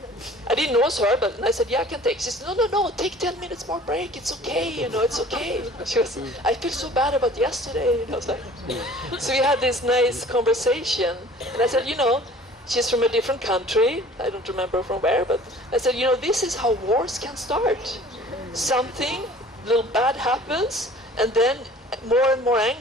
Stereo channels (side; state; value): both; normal; correlation 0.49